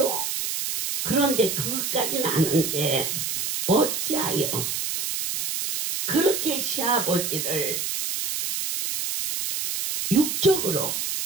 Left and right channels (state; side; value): noise; right; hiss, 2 dB below the sound